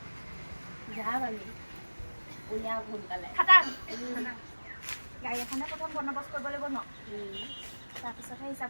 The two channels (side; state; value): both; inverted; correlation -1.00